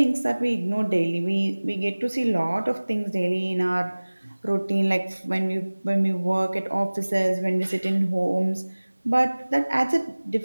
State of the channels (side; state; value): both; inverted; correlation -1.00